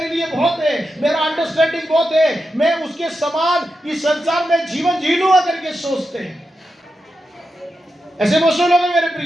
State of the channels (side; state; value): both; normal; correlation 0.88